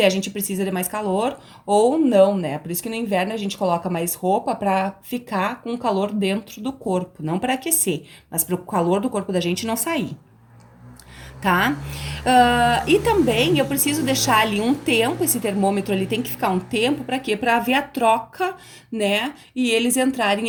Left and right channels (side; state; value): both; identical; correlation 1.00